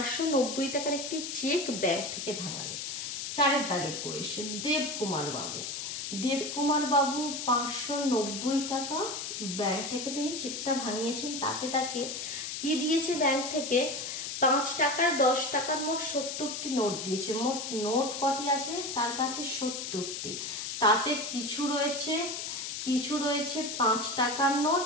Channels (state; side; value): noise; left; hiss, 5 dB below the sound